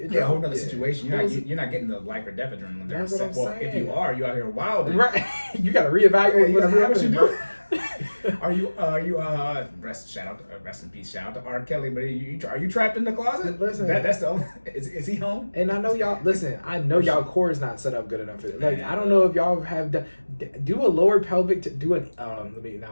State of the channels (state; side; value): inverted; both; correlation -1.00